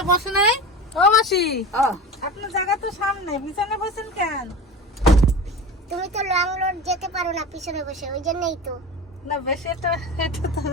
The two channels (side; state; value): both; normal; correlation 0.30